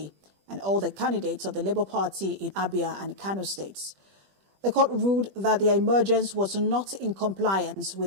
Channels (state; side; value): late; left; 21 ms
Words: and all the candidates of the Labour Party in Abia and Kano states. The court ruled that their emergence was not in compliance